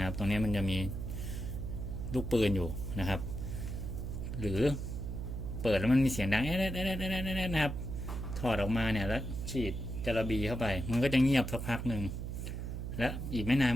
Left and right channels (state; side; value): noise; right; hum, 5 dB below the sound